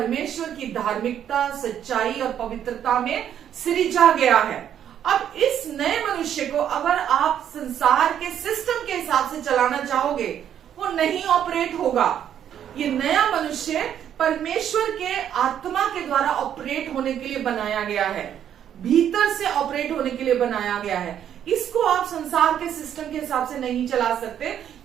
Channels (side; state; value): left; quieter; 9.7 dB